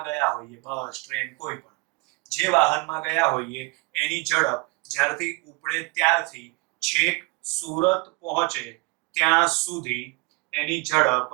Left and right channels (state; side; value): quieter; left; 28.4 dB